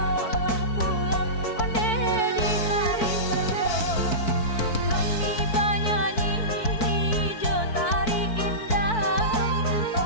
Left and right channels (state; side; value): late; right; 4.6 ms